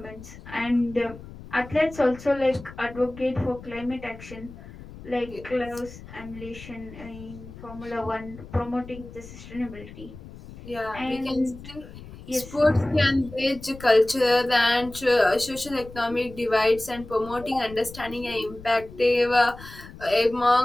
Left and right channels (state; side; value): noise; left; rumble, 16 dB below the sound